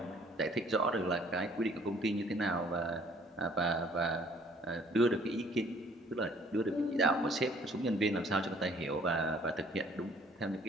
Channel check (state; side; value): normal; both; correlation 0.58